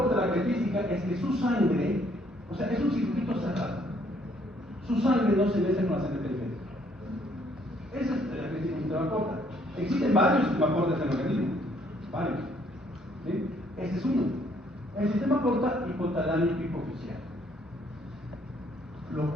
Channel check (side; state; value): both; normal; correlation 0.66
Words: la característica es que su sangre, o sea, es un circuito cerrado. Su sangre no se mezcla con la sangre periférica. Esa es la característica del sistema porta. Existen varios sistemas portas en el organismo. Varios. ¿Sí? Este es uno. El sistema porta hipotalámico hipofisial. Lo